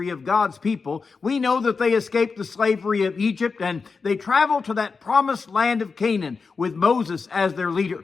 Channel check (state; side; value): quieter; right; 4.8 dB